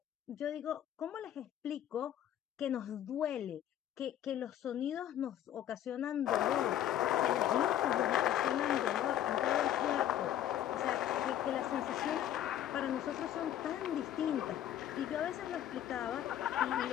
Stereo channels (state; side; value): quieter; right; 11.4 dB